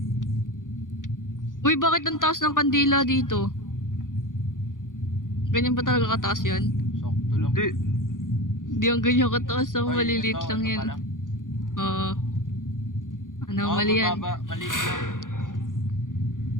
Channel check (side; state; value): right; late; 0.89 ms